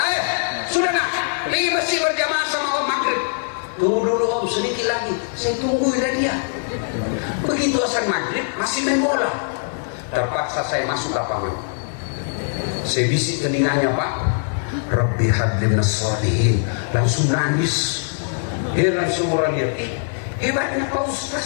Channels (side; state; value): right; silent; digital silence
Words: sudah nak pergi masjid berjamaah sama om maghrib. Tunggu dulu om, sedikit lagi saya tungguin dia. Begitu asal maghrib masih main bola. Terpaksa saya masuk lapangan. Saya bisik telinganya, Pak, Rabbi habli minas sholihin. Langsung nangis. Dia langsung orang lihat, hebatnya Pak